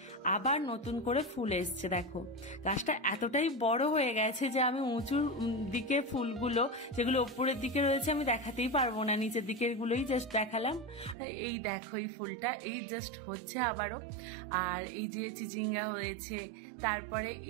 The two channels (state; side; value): drops out; left; at 11.2 s